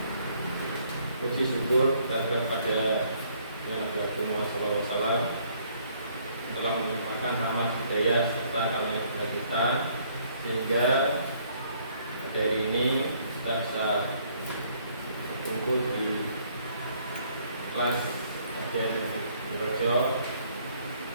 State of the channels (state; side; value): inverted; both; correlation -0.65